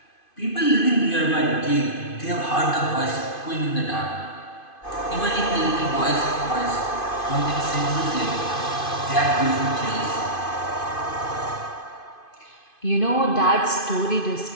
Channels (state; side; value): late; right; 2.5 ms